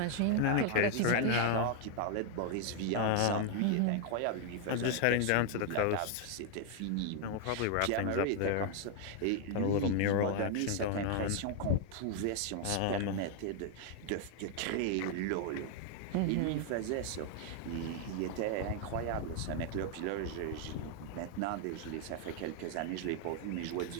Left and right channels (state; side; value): different; both; correlation 0.00